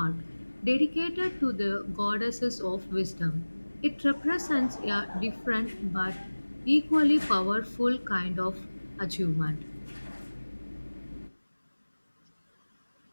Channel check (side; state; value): both; inverted; correlation -1.00